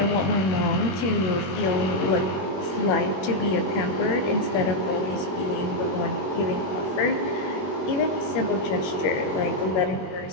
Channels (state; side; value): late; right; 21 ms